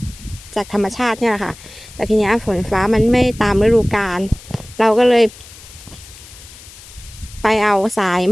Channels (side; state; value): left; noise; hiss, 19 dB below the sound